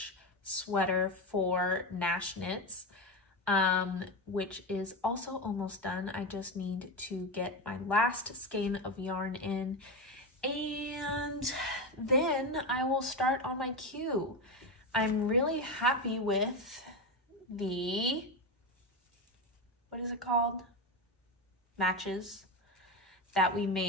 sweater for Nash Knits, which is also almost done. I just need to get my last skein of yarn in, and then I will start on my queue. I'm really happy with the, what is it called? Matches that we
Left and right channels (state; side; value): normal; both; correlation 0.16